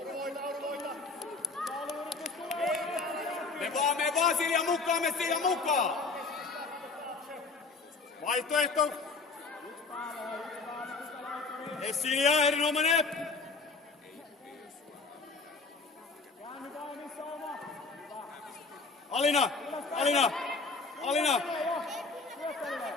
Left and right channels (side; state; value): right; quieter; 4.2 dB